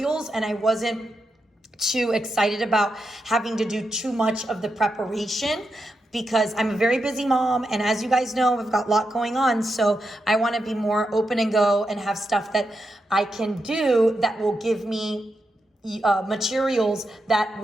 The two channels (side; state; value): both; normal; correlation 0.86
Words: and I wasn't too excited about having to do too much of the preparation, because I'm a very busy mom, and as you guys know, I've got a lot going on, so I want to be more open and go and have stuff that I can do that will give me materials that